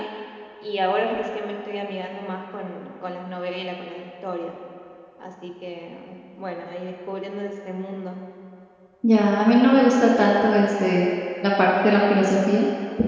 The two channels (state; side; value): identical; both; correlation 1.00